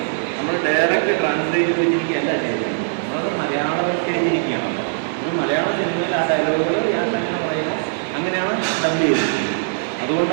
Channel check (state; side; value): silent; left; 62 dB below the other